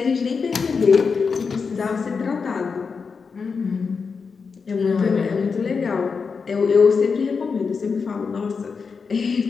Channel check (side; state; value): right; quieter; 5.3 dB